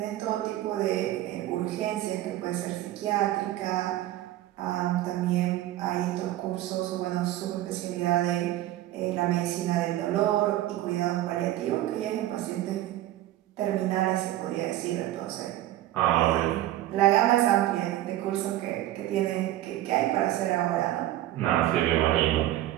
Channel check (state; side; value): quieter; left; 14.4 dB